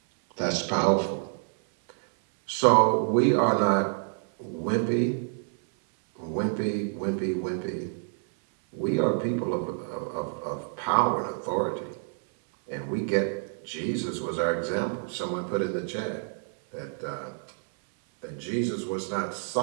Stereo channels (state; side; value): silent; left; 59 dB below the other